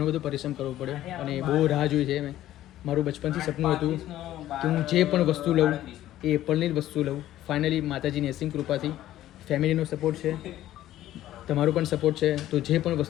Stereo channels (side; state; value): right; quieter; 13.5 dB